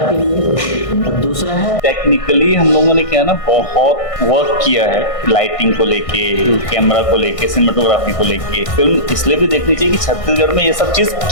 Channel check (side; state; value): right; late; 1.6 ms